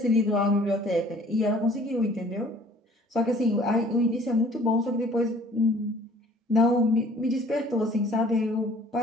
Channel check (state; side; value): normal; both; correlation 0.54